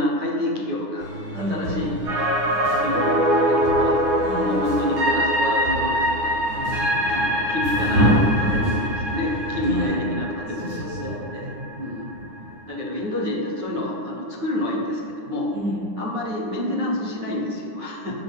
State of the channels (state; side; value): late; left; 9.7 ms